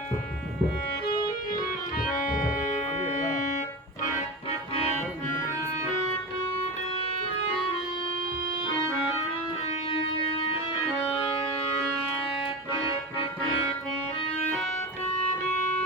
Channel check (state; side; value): normal; both; correlation 0.25